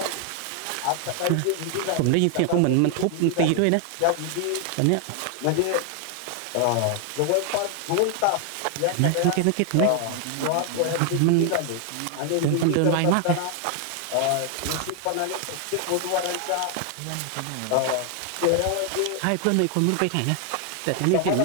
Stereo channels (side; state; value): both; different; correlation 0.00